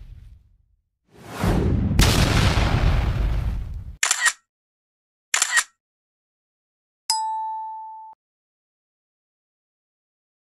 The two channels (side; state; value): both; identical; correlation 1.00